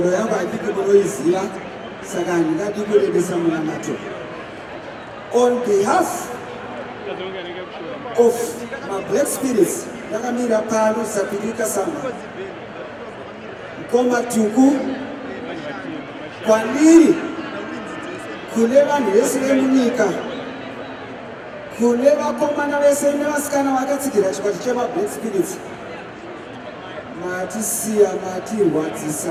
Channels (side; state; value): both; identical; correlation 1.00